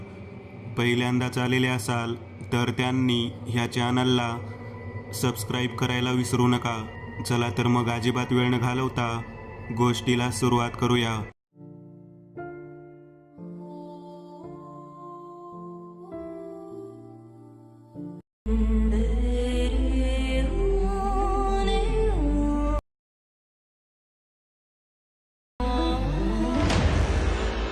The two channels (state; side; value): identical; both; correlation 1.00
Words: पहिल्यांदाच आलेले असाल तर त्यांनी ह्या चॅनलला सबस्क्राईब करायला विसरू नका. चला तर मग अजिबात वेळ न घालवता गोष्टीला सुरुवात करूया.